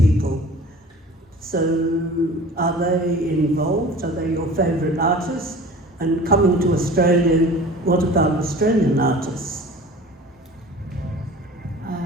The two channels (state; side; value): normal; both; correlation 0.42